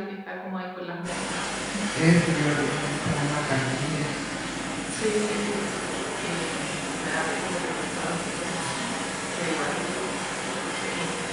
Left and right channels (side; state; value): both; identical; correlation 1.00